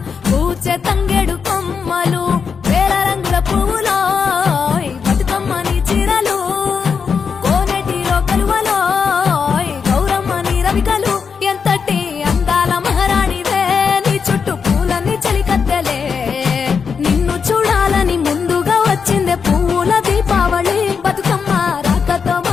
పూచె తంగెడు కొమ్మలు వేల రంగుల పువ్వులో బతుకమ్మని చీరలు కోనేటిలో కలువలో గౌరమ్మని రవికలు ఎంతటి అందాల మహారాణివే నీ చుట్టూ పూలన్నీ చలికత్తెలే నిన్ను చూడాలని ముందుగా వచ్చిందే పువ్వుల దీపావళి బతుకమ్మ రాకతో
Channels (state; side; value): quieter; right; 6.0 dB